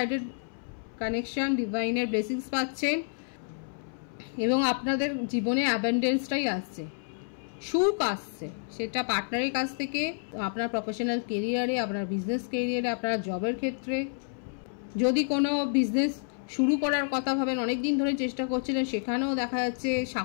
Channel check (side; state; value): right; silent; 58 dB below the other